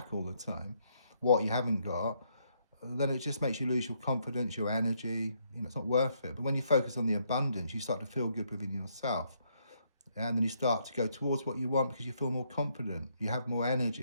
all the time, what you haven't got, then it just makes you lose your confidence, your energy. You know, it's not worth it. But when you focus on the abundance, you start to feel good within yourself. And then you start to go towards what you want because you feel more confident, you have more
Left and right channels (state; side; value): inverted; both; correlation -0.73